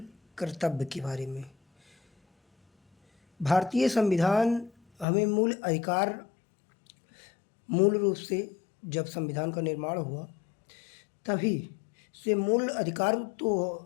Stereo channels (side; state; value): right; drops out; at 5.1 s